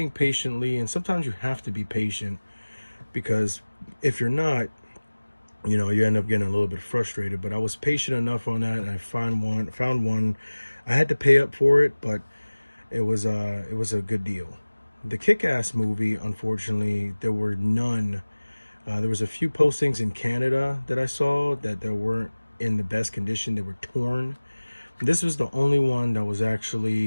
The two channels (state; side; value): inverted; both; correlation -1.00